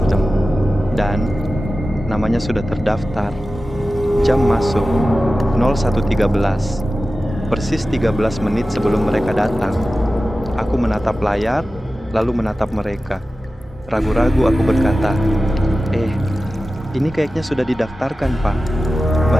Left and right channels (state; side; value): normal; both; correlation 0.95